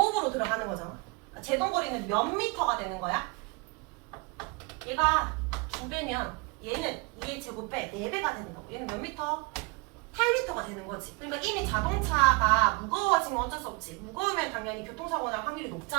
들어가는 거잖아. 제동거리는 몇 미터가 되는 거야? 얘가 2배면 얘는 2의 제곱배 4배가 되는 거고 얘는 몇 미터? 8m가 되는 거지. 그러니까 이미 자동차가 무거워지면 어쩔 수 없지. 무거우면 당연히 교통사고 날 확률이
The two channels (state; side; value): quieter; left; 28.4 dB